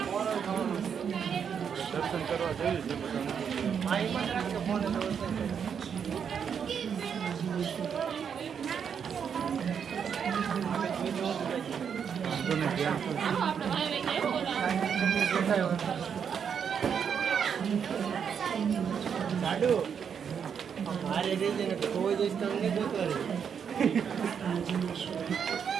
દર્શન કરવા જઈએ છીએ બધાને. મારે રેજે ને કોઈ દિવસ તમને ગોતવા રહી.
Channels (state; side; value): quieter; left; 7.3 dB